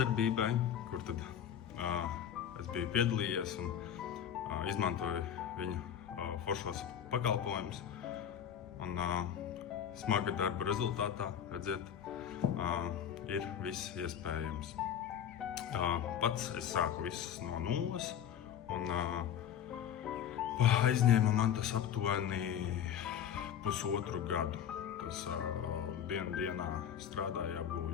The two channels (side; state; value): right; quieter; 9.3 dB